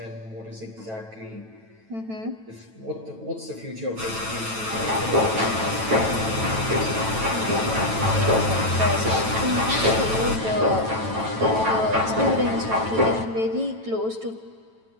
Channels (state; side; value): late; left; 9.1 ms